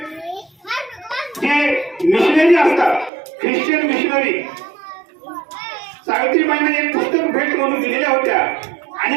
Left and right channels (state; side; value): drops out; left; at 3.1 s